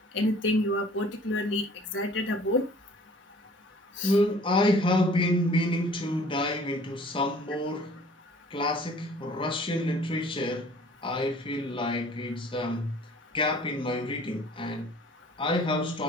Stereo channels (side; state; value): both; normal; correlation 0.52